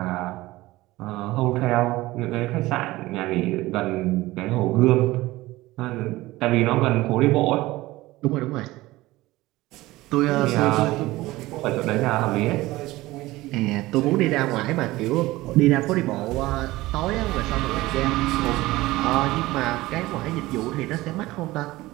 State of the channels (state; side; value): quieter; left; 18.6 dB